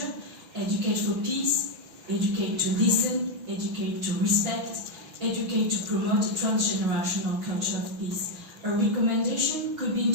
Educate for peace, educate to listen, educate to respect, educate to promote a transgenerational culture of peace. A recommendation could be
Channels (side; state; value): left; late; 6.1 ms